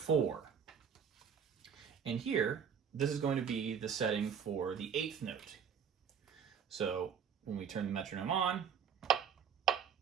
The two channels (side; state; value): left; quieter; 7.4 dB